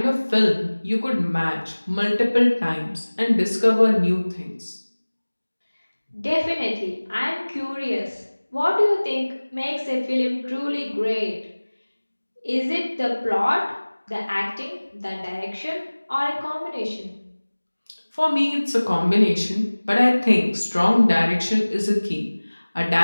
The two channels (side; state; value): both; inverted; correlation -1.00